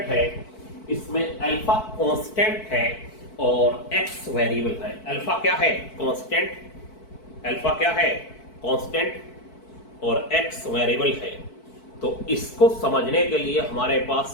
है इसमें अल्फा कांस्टेंट है और एक्स वेरिएबल है। अल्फा क्या है, कांस्टेंट, अल्फा क्या है कांस्टेंट और एक्स वेरिएबल है। तो इसको समझने के लिए हमारे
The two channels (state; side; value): late; right; 4.6 ms